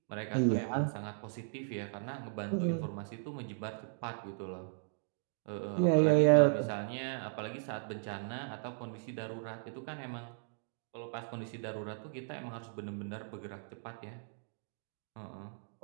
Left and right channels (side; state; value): left; silent; digital silence